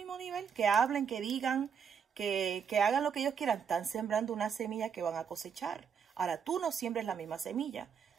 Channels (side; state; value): left; quieter; 7.0 dB